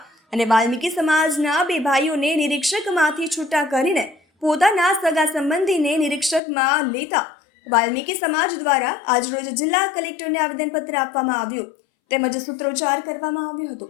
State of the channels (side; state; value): right; drops out; at 6.4 s